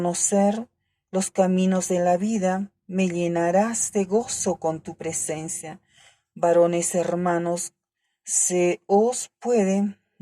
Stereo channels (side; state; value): both; identical; correlation 1.00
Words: los caminos de la vida, me llenarás de gozo con tu presencia. Varones hermanos, se os puede